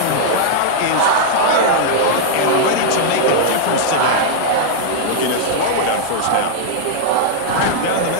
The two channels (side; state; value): both; different; correlation -0.01